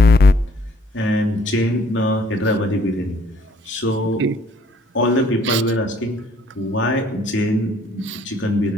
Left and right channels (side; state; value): both; normal; correlation 0.62